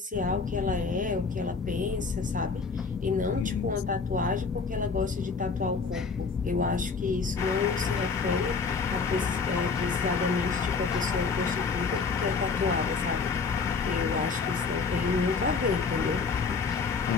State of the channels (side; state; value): right; quieter; 4.9 dB